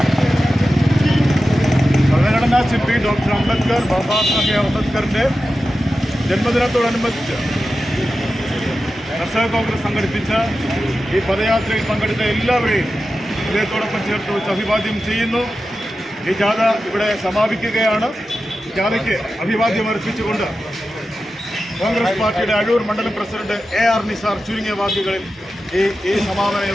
ഭരണഘടനാ ശില്പി ഡോക്ടർ അംബേദ്കർ ബാബാ സാഹേബ് അംബേദ്കറിൻ്റെ ജന്മദിനത്തോടനുബന്ധിച്ച് കർഷക കോൺഗ്രസ് സംഘടിപ്പിച്ച ഈ പദയാത്രയിൽ പങ്കെടുത്ത എല്ലാവരെയും ഹൃദയത്തോടൊപ്പം ചേർത്ത് വെച്ച് അഭിവാദ്യം ചെയ്യുന്നു. ഈ ജാഥ ഇവിടെ സമാപിക്കുകയാണ്. ജാഥയ്ക്ക് അഭിവാദ്യം അർപ്പിച്ചുകൊണ്ട് കോൺഗ്രസ് പാർട്ടിയുടെ അഴൂർ മണ്ഡലം പ്രസിഡന്റ് AR നിസാർ ചുരുങ്ങിയ വാക്കുകളിൽ ഈ സമാപന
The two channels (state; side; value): normal; both; correlation 0.92